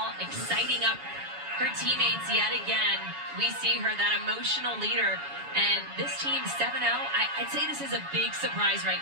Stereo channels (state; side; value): late; left; 7.1 ms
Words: exciting up her teammates yet again. We see her, that emotional leader. And this team, 7-0, I'd say this is a big surprise right